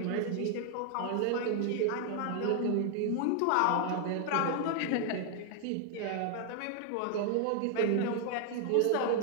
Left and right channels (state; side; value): different; both; correlation 0.00